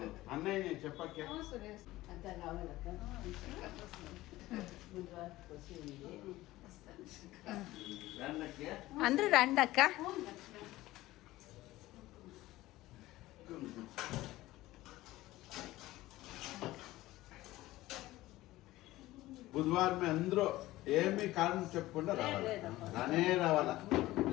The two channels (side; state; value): right; quieter; 17.2 dB